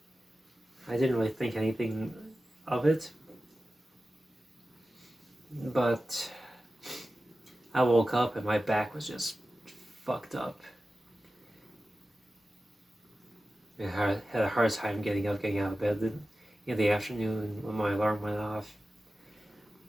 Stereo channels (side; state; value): both; normal; correlation 0.94